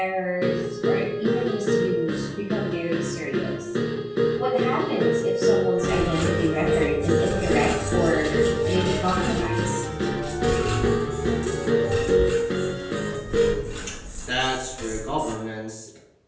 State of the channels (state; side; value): identical; both; correlation 1.00